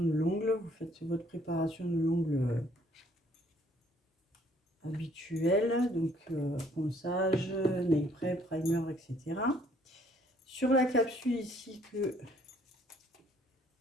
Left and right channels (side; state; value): both; normal; correlation 0.63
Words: l'ongle. Vous faites votre préparation de l'ongle habituelle. Donc ponçage, nail prep, primer, etc. Sur la capsule ici que